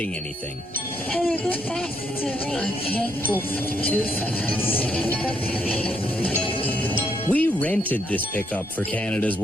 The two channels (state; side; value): normal; both; correlation 0.74